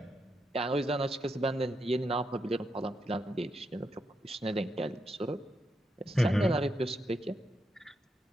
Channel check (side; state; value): both; normal; correlation 0.82